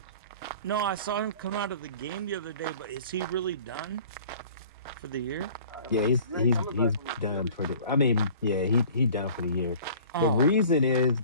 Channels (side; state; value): both; inverted; correlation -0.47